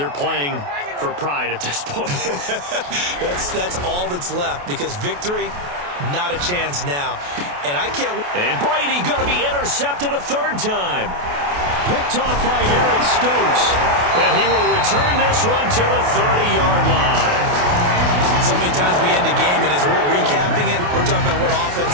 playing for pride at this point. That's all that's left because victory, not a chance now. And I can't. And Brady going to be intercepted a third time. Picked off by Eric Stokes. And he will return this one to the 30-yard line. So many times we end the game, and as we're recapping it, we're talking about what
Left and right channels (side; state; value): left; late; 28 ms